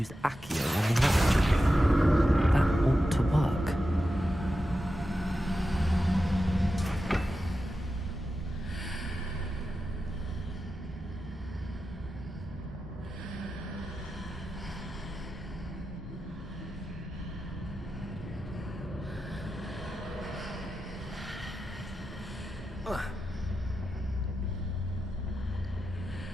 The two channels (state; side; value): normal; both; correlation 0.91